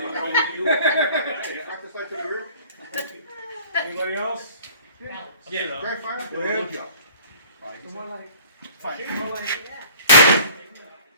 Anybody else? Yeah. Dry fire? Go ahead.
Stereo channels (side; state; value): both; inverted; correlation -0.49